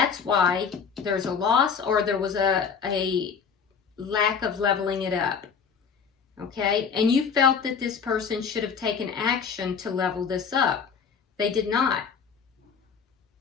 why there's a loss, or there was a lack of leveling it up. Okay, and you felt that this person should have taken action to level this up. They did not.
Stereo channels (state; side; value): quieter; right; 6.3 dB